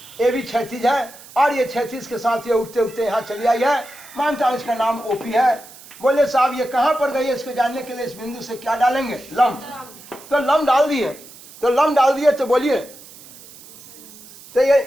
ए बी 36 है, और ये 36 के साथ ये उठते उठते यहाँ चली आई है। मानता हूँ इसका नाम ओपी है। बोले साहब ये कहाँ पर गई है इसको जानने के लिए इस बिंदु से क्या डालेंगे, लंब। तो लंब डाल दिए, तो लंब डाल दिए तो बोलिए तो ये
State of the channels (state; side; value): noise; right; hiss, 20 dB below the sound